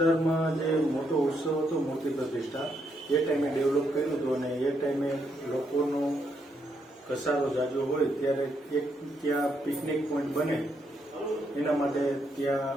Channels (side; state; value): both; normal; correlation 0.77